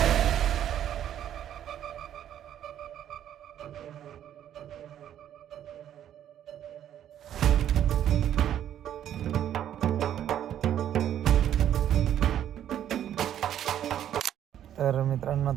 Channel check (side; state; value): left; quieter; 10.6 dB